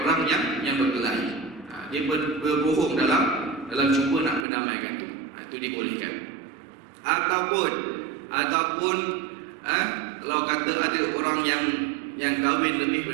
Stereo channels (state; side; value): drops out; left; at 4.5 s